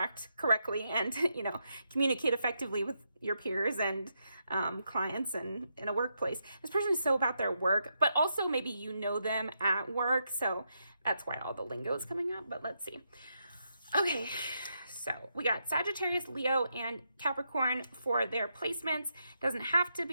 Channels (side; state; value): both; inverted; correlation -0.82